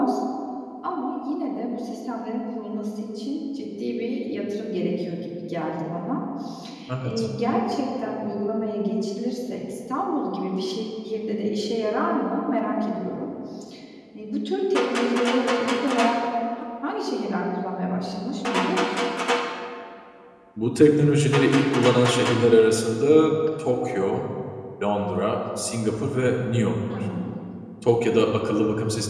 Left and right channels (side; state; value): both; identical; correlation 1.00